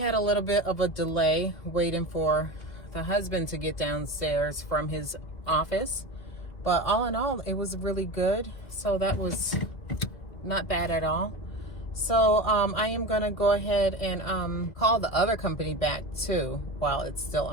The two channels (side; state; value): right; late; 2.0 ms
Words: a little bit of a delay waiting for the husband to get downstairs from his office. But all in all, it was really good. So that was not bad at all. So I am going to go ahead and call the other company back too, while it's still